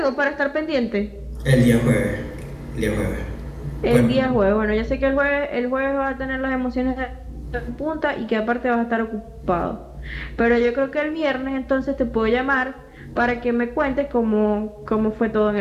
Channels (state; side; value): identical; both; correlation 1.00